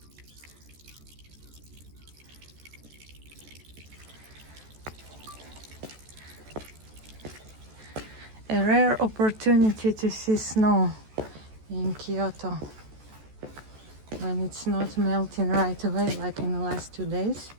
A rare opportunity to see snow in Kyoto when it's not melting right away like in the last 2 days.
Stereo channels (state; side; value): late; left; 14 ms